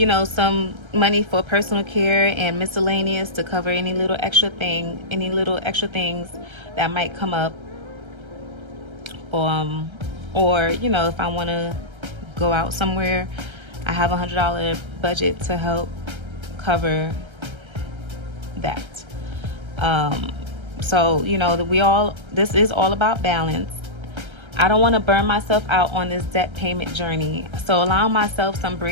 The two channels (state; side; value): late; left; 1.3 ms